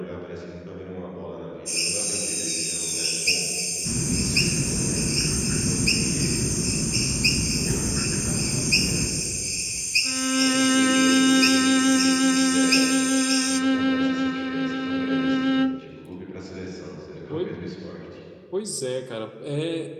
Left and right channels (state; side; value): identical; both; correlation 1.00